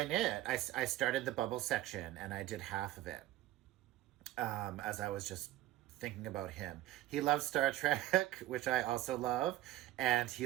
knit. I started the bubble section, and I did half of it, as I was just thinking about him. He loves Star Trek, which I also love, and he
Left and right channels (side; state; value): left; quieter; 15.0 dB